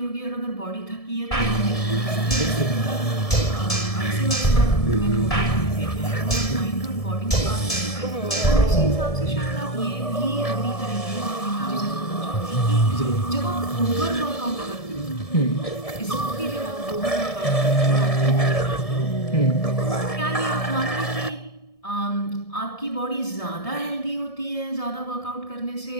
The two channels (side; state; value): right; late; 1.7 ms